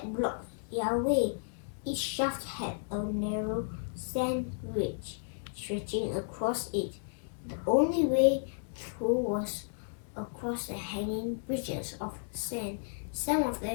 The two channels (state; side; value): silent; right; digital silence